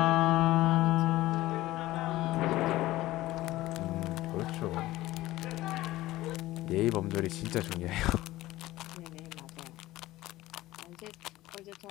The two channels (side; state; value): right; quieter; 16.8 dB